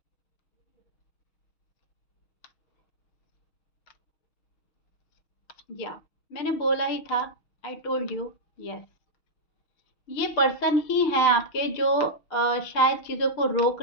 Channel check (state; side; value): late; right; 6.4 ms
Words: या मैंने बोला ही था, आई टोल्ड यू, यस। ये पर्सन ही है आपके जो शायद चीज़ों को रोक